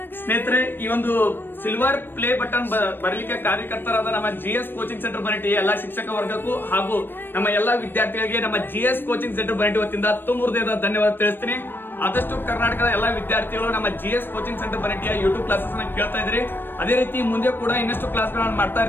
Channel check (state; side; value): late; right; 0.096 ms